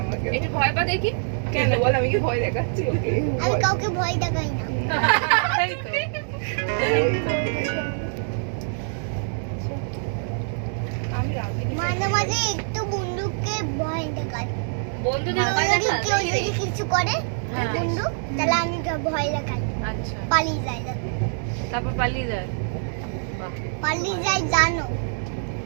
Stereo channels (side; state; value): left; silent; 62 dB below the other